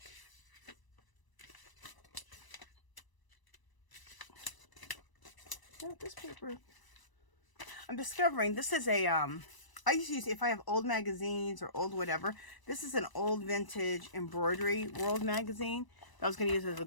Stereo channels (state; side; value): late; right; 1.0 ms